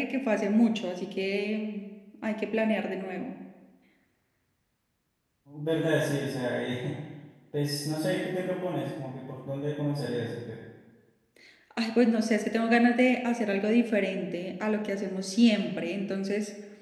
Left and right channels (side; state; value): both; identical; correlation 1.00